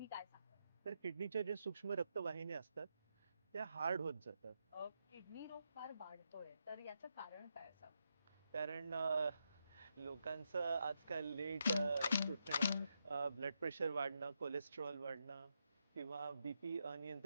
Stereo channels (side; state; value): both; inverted; correlation -0.83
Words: काय सांगाल? तर किडनीच्या जे सूक्ष्म रक्तवाहिन्या असतात त्या हार्ड होत जातात. किडनी रोग फार वाढतोय तर याचं कारण काय असावं? कारण लोकांचं आजकाल लेट उठणं, ब्लड प्रेशर वाढणं, कोलेस्ट्रॉल वाढणं किंवा बीपी